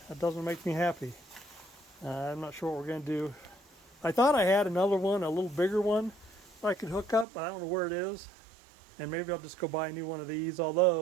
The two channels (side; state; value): left; drops out; at 7.2 s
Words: That doesn't make me happy. I'm not sure what we're going to do. I thought I had another one, a little bigger one I could hook up, but I don't know where it is. And maybe I'll just go buy a new one of these,